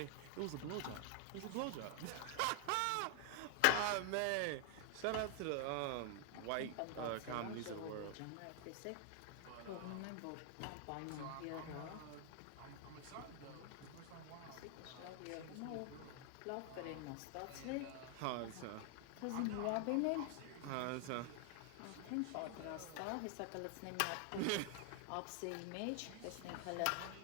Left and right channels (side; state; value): both; different; correlation 0.00